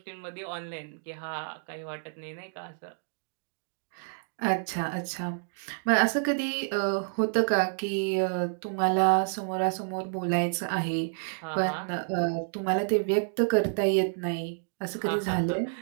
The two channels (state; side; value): silent; left; digital silence